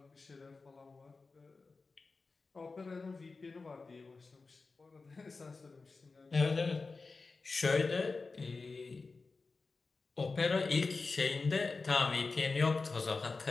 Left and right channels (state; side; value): quieter; right; 4.0 dB